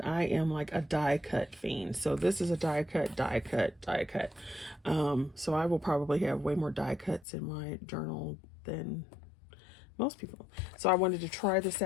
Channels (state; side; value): drops out; right; at 7.2 s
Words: I am like a die cut fiend. So this is a die cut. So I will probably have way more die cuts in my journal than most people. So I wanted to try this